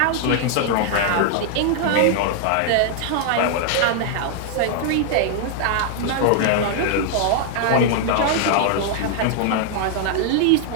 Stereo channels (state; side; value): different; both; correlation 0.00